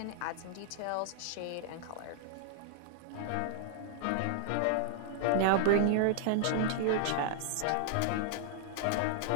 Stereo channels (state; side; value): different; both; correlation -0.01